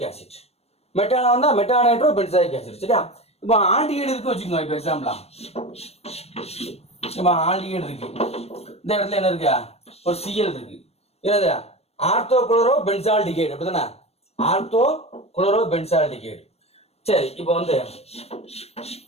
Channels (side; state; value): right; late; 0.30 ms